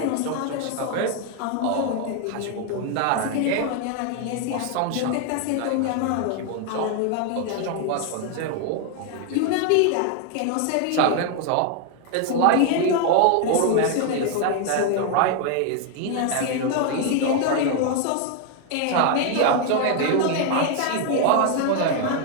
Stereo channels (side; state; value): both; different; correlation 0.01